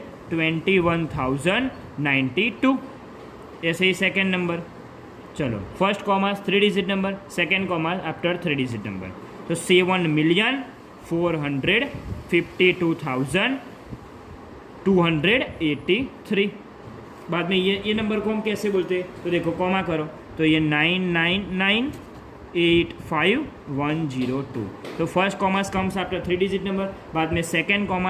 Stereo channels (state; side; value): identical; both; correlation 1.00